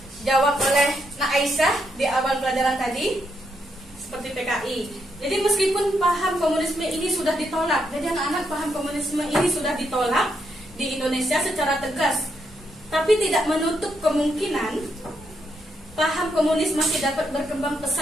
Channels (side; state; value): both; normal; correlation 0.78